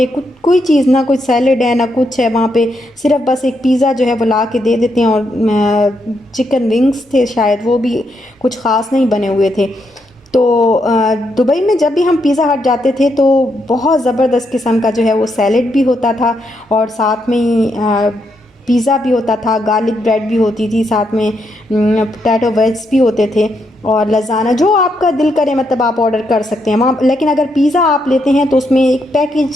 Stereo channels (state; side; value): normal; both; correlation 0.79